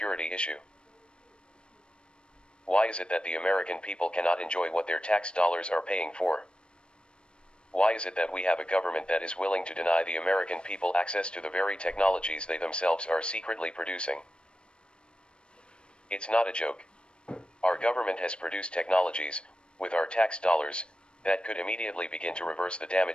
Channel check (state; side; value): late; right; 0.056 ms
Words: issue? Why is it that the American people cannot enjoy what their tax dollars are paying for? Why is it that we have a government that is willing to deny the American people access to the very technologies they themselves are secretly producing? It's not a joke. Our government has produced technologies, with our tax dollars, that could immediately begin to reverse the